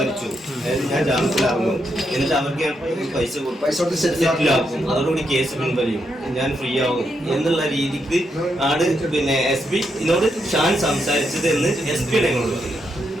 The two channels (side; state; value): both; normal; correlation 0.81